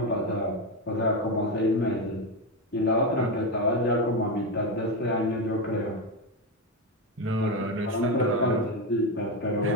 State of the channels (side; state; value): both; normal; correlation 0.12